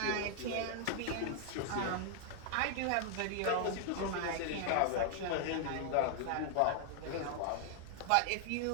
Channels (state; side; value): different; both; correlation 0.00